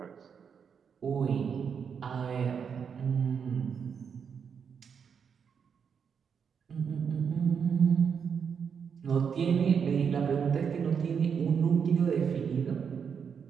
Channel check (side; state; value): left; quieter; 6.8 dB